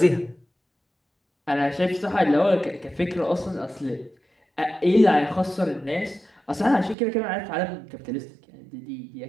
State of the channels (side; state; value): left; drops out; at 7.0 s